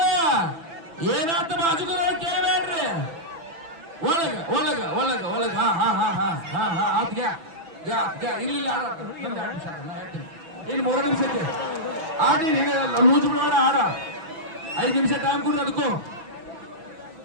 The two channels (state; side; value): late; left; 6.0 ms